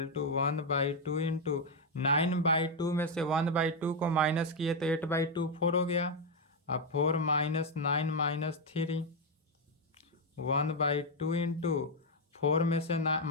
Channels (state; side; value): normal; both; correlation 0.03